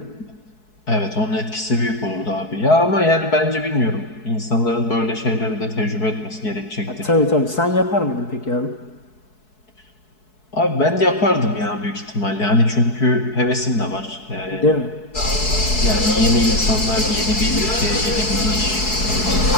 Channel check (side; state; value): right; late; 4.7 ms